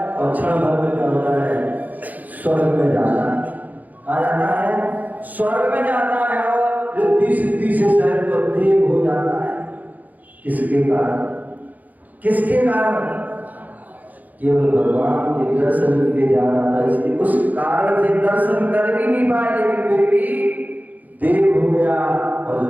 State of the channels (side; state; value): left; late; 0.081 ms